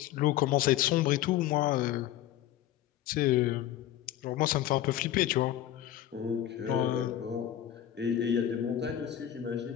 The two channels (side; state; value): right; quieter; 12.1 dB